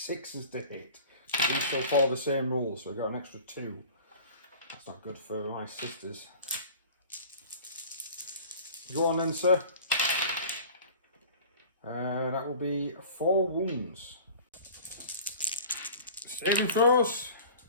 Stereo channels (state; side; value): inverted; both; correlation -0.42